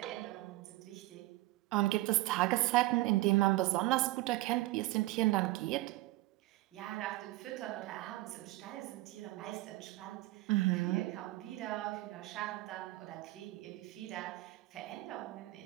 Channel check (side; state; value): left; quieter; 18.4 dB